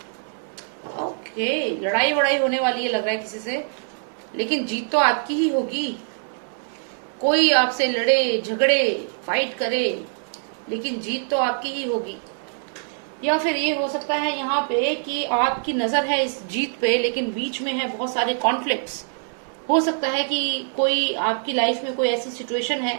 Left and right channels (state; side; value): silent; left; 63 dB below the other